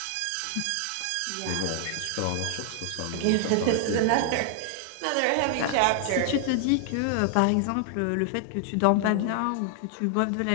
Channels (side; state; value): both; different; correlation 0.00